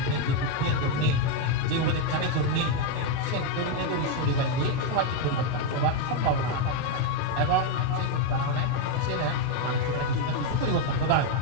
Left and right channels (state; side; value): different; both; correlation 0.02